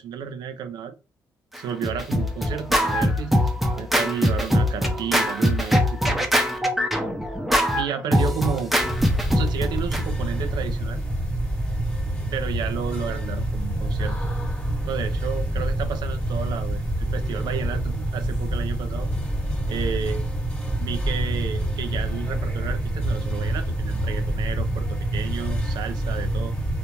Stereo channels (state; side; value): normal; both; correlation 0.78